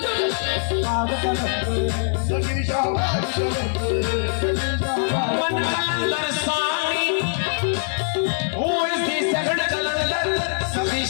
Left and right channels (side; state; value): right; silent; 64 dB below the other